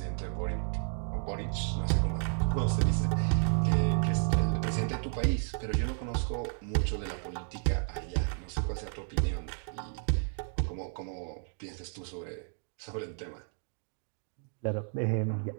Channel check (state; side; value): silent; left; 56 dB below the other